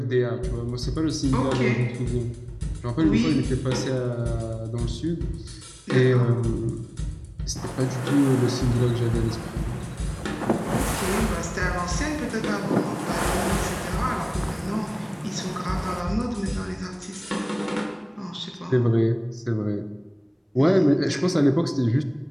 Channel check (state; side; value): identical; both; correlation 1.00